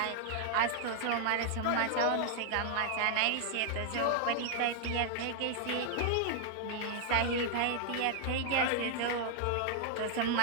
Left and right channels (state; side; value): different; both; correlation 0.00